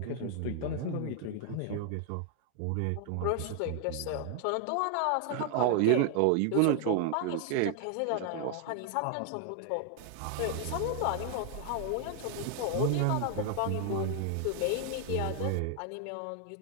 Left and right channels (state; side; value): different; both; correlation 0.00